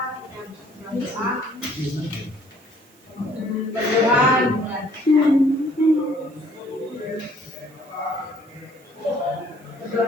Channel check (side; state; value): right; noise; hiss, 30 dB below the sound